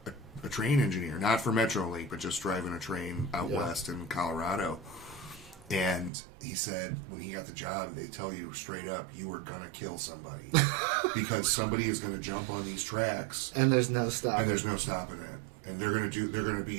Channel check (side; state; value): left; drops out; at 6.1 s